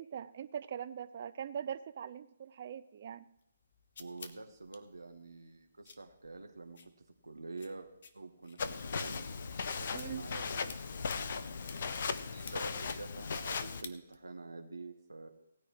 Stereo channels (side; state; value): both; inverted; correlation -0.76